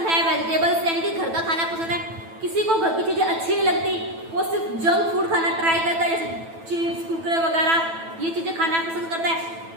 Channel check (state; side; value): late; left; 9.1 ms